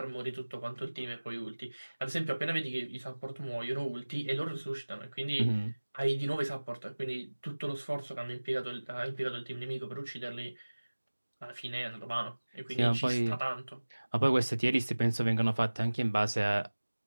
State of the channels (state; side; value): inverted; both; correlation -1.00